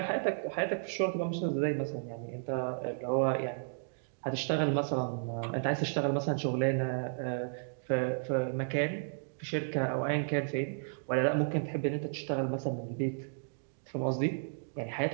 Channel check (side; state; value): left; silent; digital silence